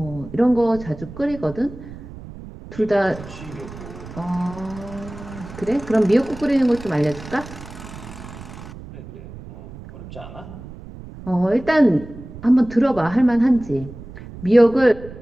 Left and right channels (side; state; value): right; noise; rumble, 15 dB below the sound